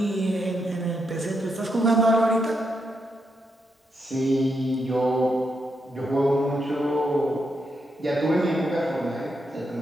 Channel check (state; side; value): normal; both; correlation 0.81